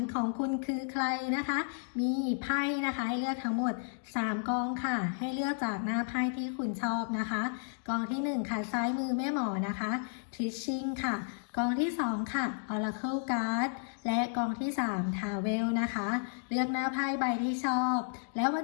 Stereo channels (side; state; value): right; silent; digital silence